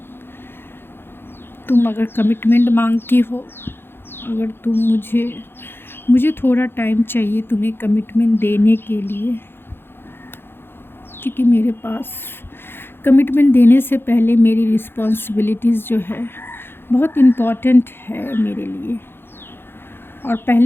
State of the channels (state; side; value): late; right; 0.11 ms